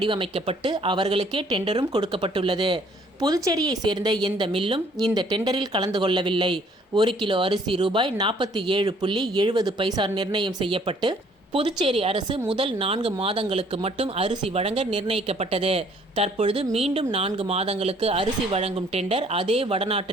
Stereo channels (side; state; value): both; normal; correlation 0.60